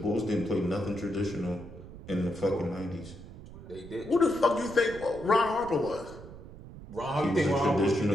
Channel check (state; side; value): noise; right; rumble, 15 dB below the sound